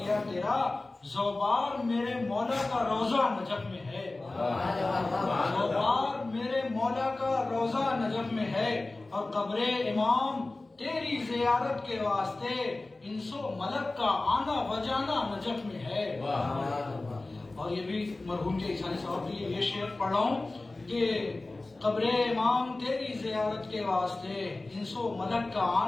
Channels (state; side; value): quieter; right; 3.1 dB